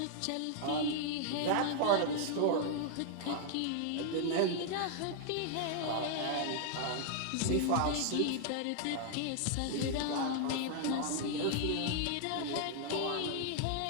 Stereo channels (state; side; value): different; both; correlation 0.00